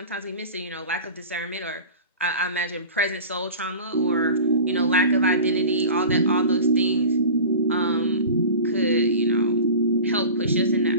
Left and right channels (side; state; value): both; inverted; correlation -0.36